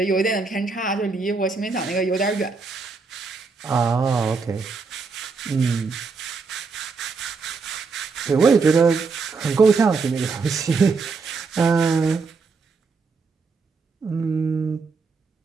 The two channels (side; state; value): left; quieter; 4.6 dB